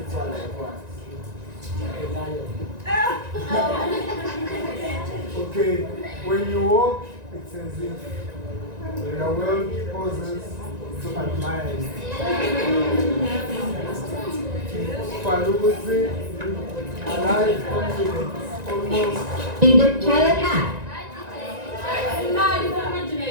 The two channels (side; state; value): left; late; 1.9 ms